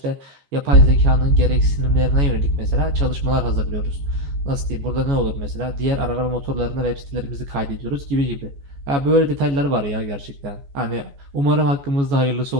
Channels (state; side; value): late; left; 14 ms